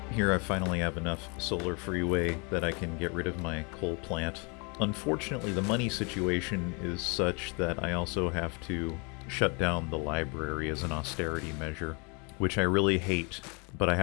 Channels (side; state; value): right; quieter; 32.9 dB